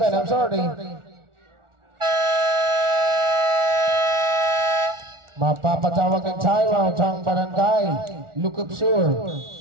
I'm sorry. Mapapatawag ng timeout ang barangay, Lukup Sur.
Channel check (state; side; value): late; left; 1.4 ms